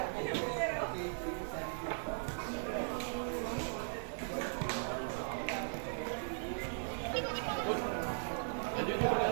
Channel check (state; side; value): silent; left; 52 dB below the other